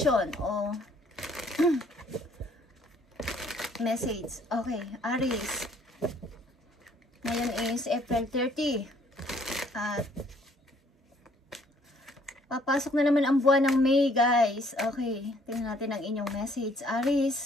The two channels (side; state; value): both; normal; correlation 0.62